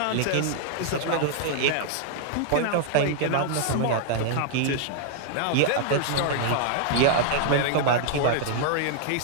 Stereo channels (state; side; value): different; both; correlation -0.01